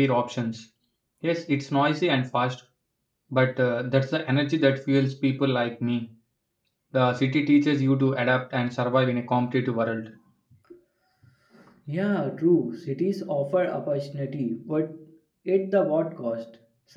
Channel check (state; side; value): identical; both; correlation 1.00